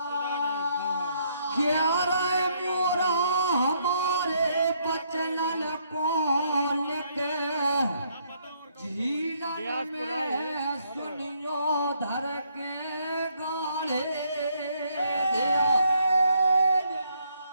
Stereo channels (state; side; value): inverted; both; correlation -0.71